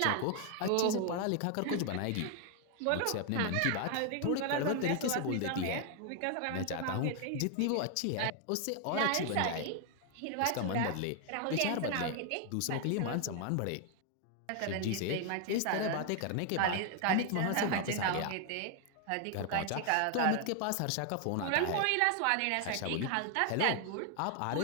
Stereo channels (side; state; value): both; different; correlation 0.00